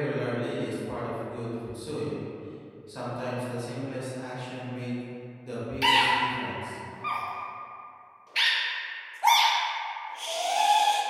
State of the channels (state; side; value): identical; both; correlation 1.00